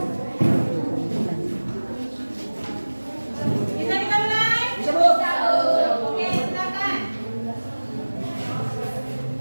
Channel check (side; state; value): both; inverted; correlation -1.00